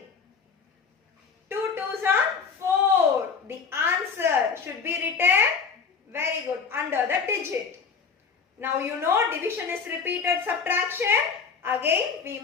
2 twos are 4. The answer should be written, very good, under the digit. Now you know division is repeated subtraction. Again we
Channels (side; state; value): right; quieter; 5.6 dB